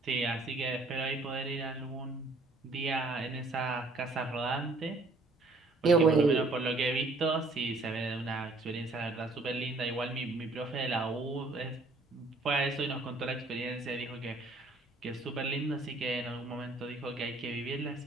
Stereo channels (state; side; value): quieter; left; 3.1 dB